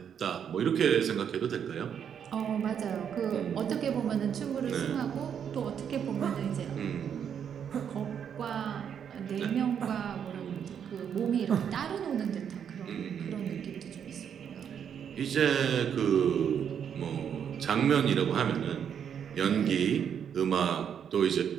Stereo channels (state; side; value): quieter; left; 8.2 dB